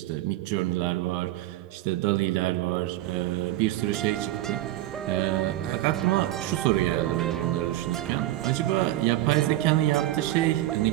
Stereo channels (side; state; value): left; quieter; 15.2 dB